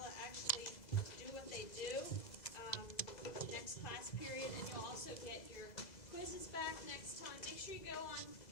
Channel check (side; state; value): right; late; 2.0 ms